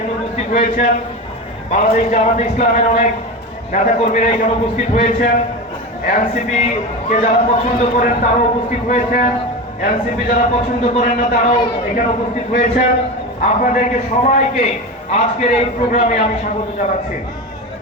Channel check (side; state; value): both; normal; correlation 0.24